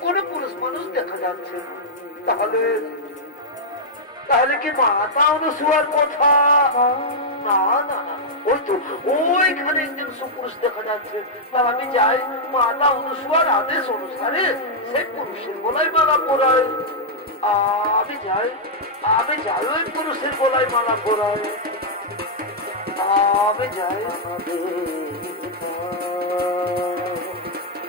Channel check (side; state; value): both; normal; correlation -0.07